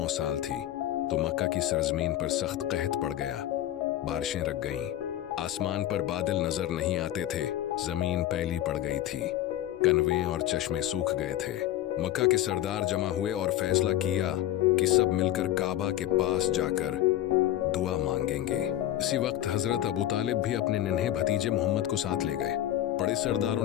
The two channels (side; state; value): right; quieter; 13.0 dB